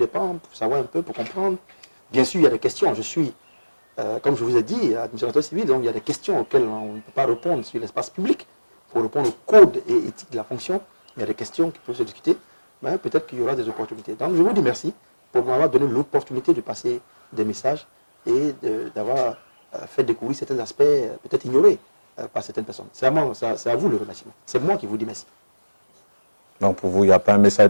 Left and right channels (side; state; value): both; inverted; correlation -1.00